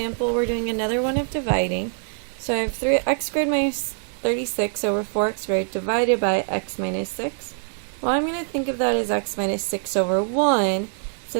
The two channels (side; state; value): left; silent; 58 dB below the other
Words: we're doing another one of dividing. So I have 3x squared minus 36 over 4x squared divided by x minus 6. Well, I'm going to think of that as x minus 6 over 1.